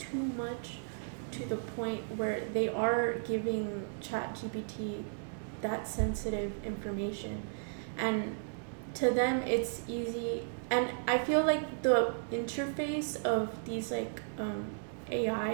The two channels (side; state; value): left; silent; digital silence